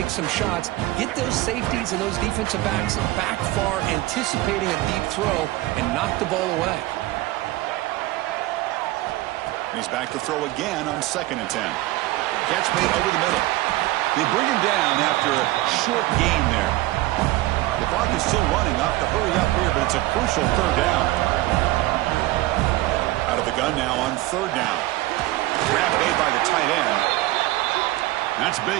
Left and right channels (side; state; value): left; quieter; 18.0 dB